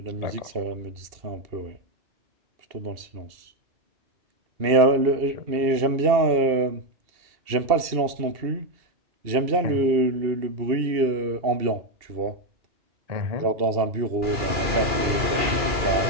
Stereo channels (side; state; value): left; late; 2.7 ms